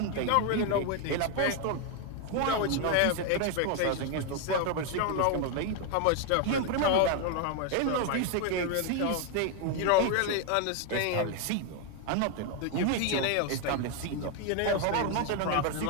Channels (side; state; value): both; different; correlation 0.01